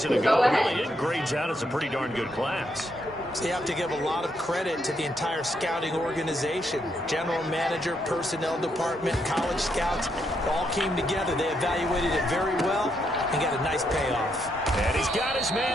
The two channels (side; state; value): both; normal; correlation 0.77